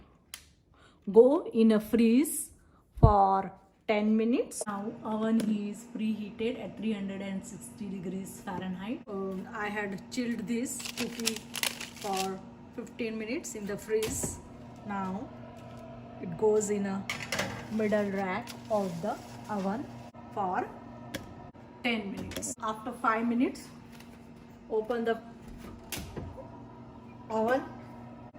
go in a freeze for 10 minutes. Now oven is preheated at 360 degrees Fahrenheit. I had chilled this cookie for 15 minutes in the freeze. Now it goes in a middle rack of the oven for 10 minutes. After 5 minutes, open the oven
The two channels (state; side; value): identical; both; correlation 1.00